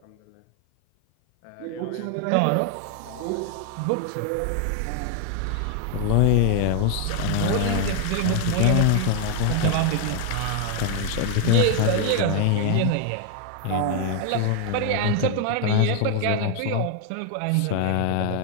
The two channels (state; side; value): different; both; correlation 0.00